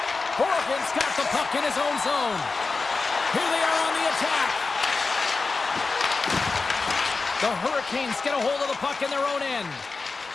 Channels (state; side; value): quieter; right; 4.1 dB